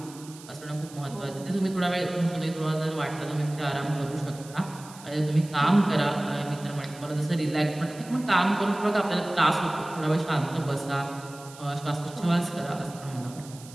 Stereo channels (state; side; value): noise; right; hiss, 19 dB below the sound